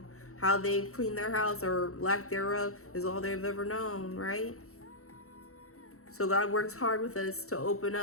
How they've cleaned their house or lack thereof is all they've ever known, right? So God works hard with us to open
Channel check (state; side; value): late; right; 0.64 ms